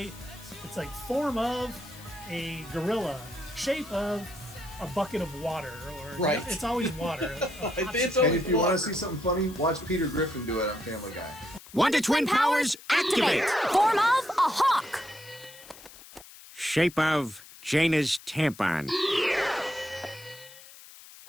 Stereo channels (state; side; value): noise; left; hiss, 19 dB below the sound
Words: It's like form of a gorilla, shape of a bucket of water, or Right. it's always water. It's And always if you want water. to see something funny, watch Peter Griffin do it on Family Guy. Wonder Twin powers activate! Form of a hawk. Shape of Jaina's tampon.